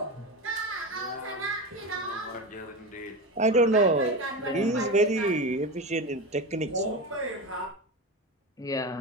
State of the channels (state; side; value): normal; both; correlation 0.22